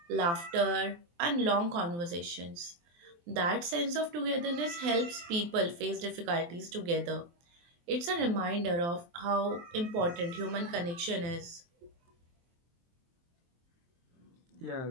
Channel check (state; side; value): late; left; 23 ms